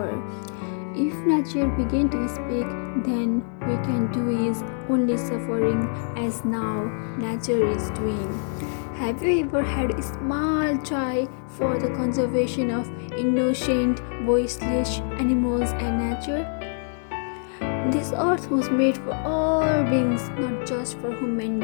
If nature begin to speak, then we can do is only suffering as now nature is doing. Have you ever had a small try for the conservation of innocent, voiceless animals and nature? This earth was made for all beings, not just for human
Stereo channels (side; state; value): right; silent; 62 dB below the other